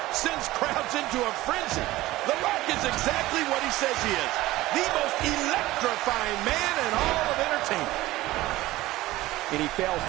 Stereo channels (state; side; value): quieter; left; 17.5 dB